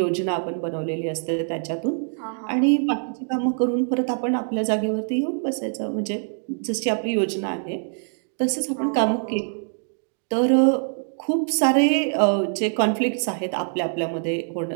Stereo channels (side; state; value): left; silent; digital silence